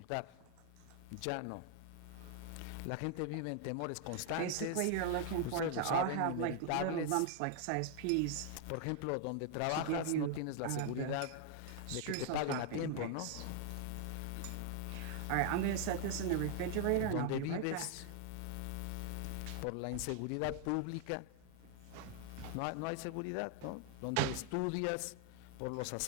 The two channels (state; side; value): different; both; correlation 0.00